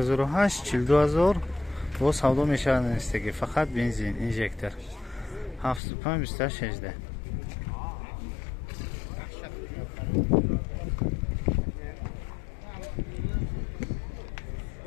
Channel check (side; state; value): right; drops out; at 5.8 s